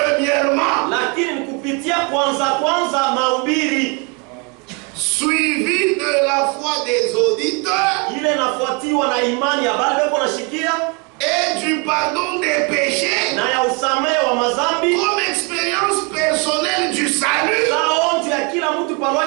lakini kupitia kwanza mahubiri suivi de la foi des auditeurs ile nafuatiwa na imani ya bale beko nashikia et du pardon des péchés na ya usamehe wa mazambi comme expérience personnelle du salut. saonjo ya kila mtu kwa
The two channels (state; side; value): quieter; left; 32.4 dB